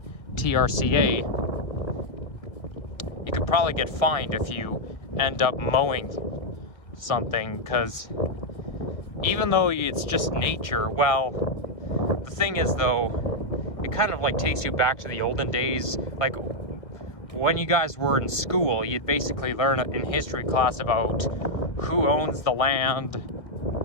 TRCA. You could probably get fined if you end up mowing something, because even though it's just nature, well, the thing is though, it kind of like takes you back to the olden days. Like when you guys were in school, you'd basically learn in history class about who owns the land,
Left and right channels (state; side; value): late; right; 1.8 ms